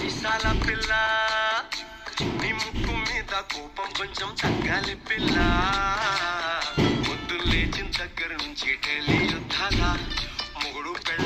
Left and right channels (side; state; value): both; identical; correlation 1.00